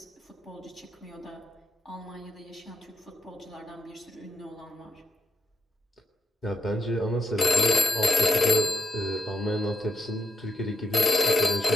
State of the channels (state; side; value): normal; both; correlation 0.80